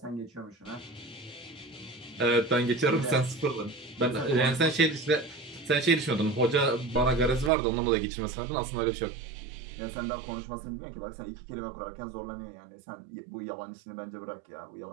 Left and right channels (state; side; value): drops out; left; at 7.5 s